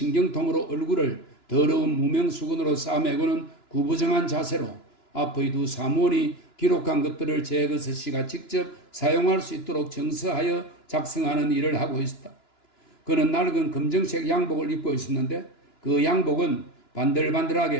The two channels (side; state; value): right; late; 2.9 ms